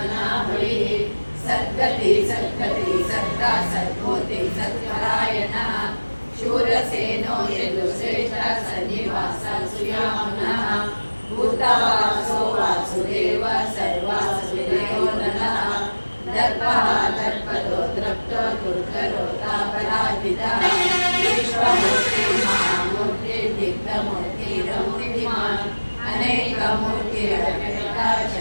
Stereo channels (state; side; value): inverted; both; correlation -1.00